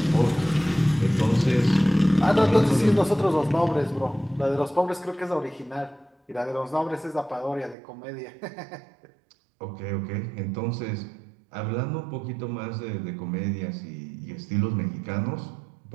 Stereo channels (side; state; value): left; drops out; at 7.8 s